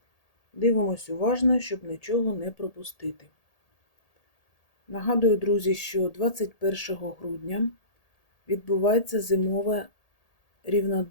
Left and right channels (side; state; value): right; late; 1.8 ms